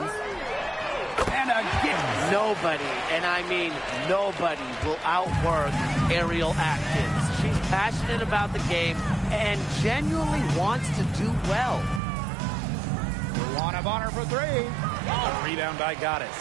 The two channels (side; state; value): left; drops out; at 12.0 s